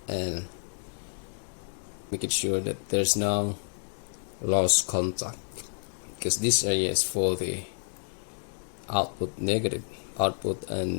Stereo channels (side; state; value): right; silent; digital silence